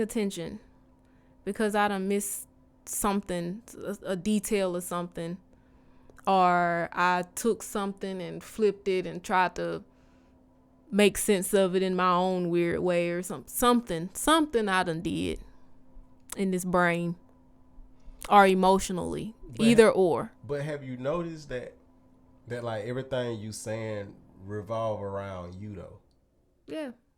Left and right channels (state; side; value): identical; both; correlation 1.00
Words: attention because I done missed something, a detail or something, or I took something and flipped it and tried to make sense of it in my own weird way or something I done did in this brain or emotionally, either or. But have you noticed that like everything you saying revolve around you though? Yeah.